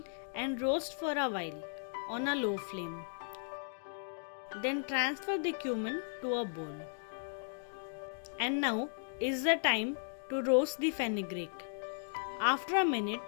and roast for a while on a low flame. Then transfer the cumin to a bowl. And now is the time to roast the fenugreek. After a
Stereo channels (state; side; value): silent; right; digital silence